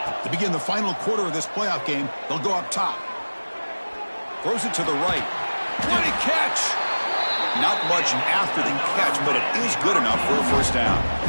To begin the final quarter of this playoff game, they'll go up top. Throws it to the right. What a catch! Not much after the catch, but it is good enough for a first down.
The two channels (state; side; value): inverted; both; correlation -1.00